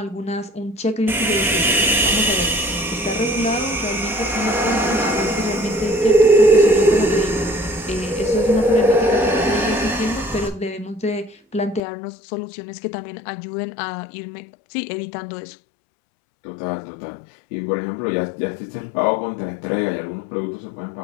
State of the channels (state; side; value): drops out; right; at 11.8 s